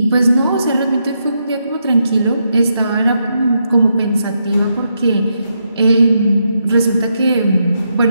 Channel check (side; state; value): both; inverted; correlation -0.81